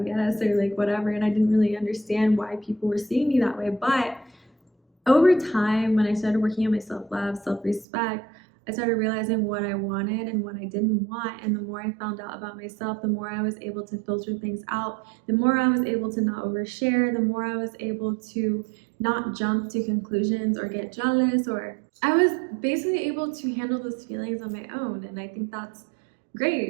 guess, or like whatever. And I didn't really understand why people were seeing me that way. But over time, when I started working on my self-love, self-respect, I started realizing what I wanted and what I didn't want. And the more I found out about myself, the more I was able to filter things out, the more I was able to not overshare, the more I was able to not jump to conclusions or get jealous, or I was basically able to handle those feelings on my own. And I think that's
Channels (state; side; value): drops out; left; at 7.9 s